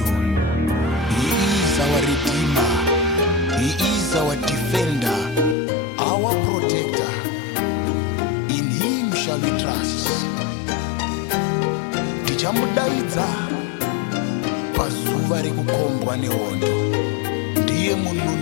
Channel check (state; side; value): drops out; right; at 5.6 s